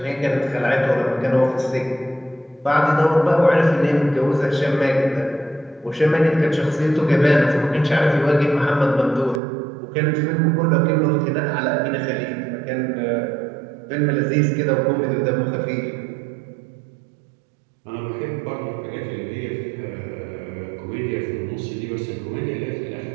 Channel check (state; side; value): drops out; left; at 9.4 s